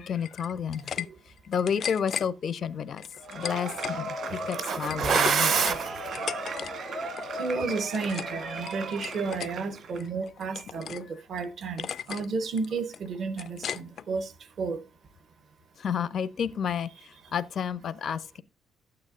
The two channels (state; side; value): normal; both; correlation 0.66